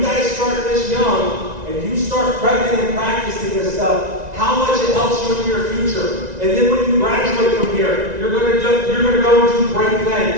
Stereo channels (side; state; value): left; late; 1.9 ms